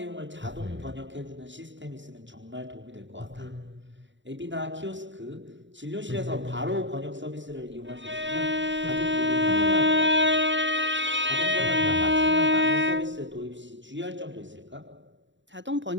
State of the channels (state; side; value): late; left; 0.54 ms